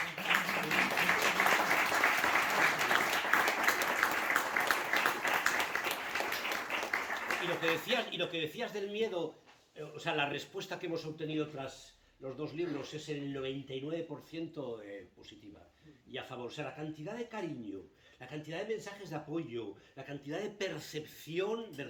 Y lo que decías del miedo, o sea, la respuesta que hemos obtenido tras los dos libros es el 99% positiva y a favor. O sea, la cantidad de cariño, la cantidad de mensajes de apoyo, la cantidad de percepción,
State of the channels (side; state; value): both; identical; correlation 1.00